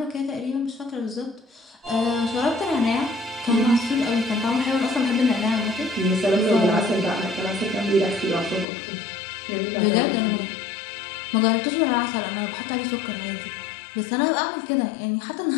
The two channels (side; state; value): right; drops out; at 8.7 s